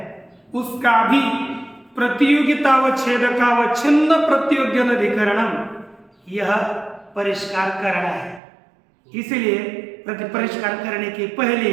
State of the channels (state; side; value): drops out; left; at 8.4 s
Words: उसका भी प्रतियोगितावच्छेदकावच्छिन्न प्रतियोग्यनधिकरणम यह परिष्कार करना है। इसलिए परिष्कार करने के पहले